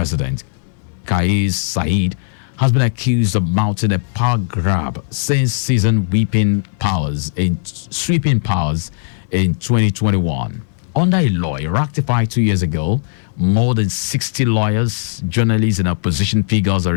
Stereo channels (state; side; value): silent; right; digital silence